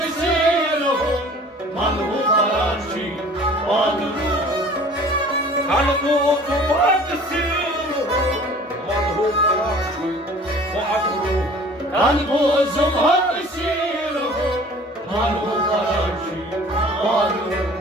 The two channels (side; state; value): both; normal; correlation 0.48